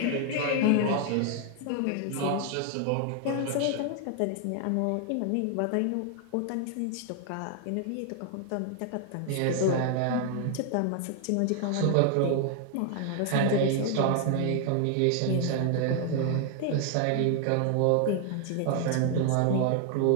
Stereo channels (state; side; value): different; both; correlation 0.01